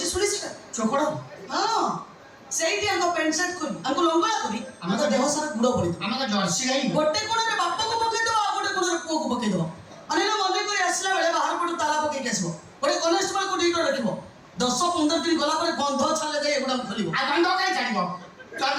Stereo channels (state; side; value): identical; both; correlation 1.00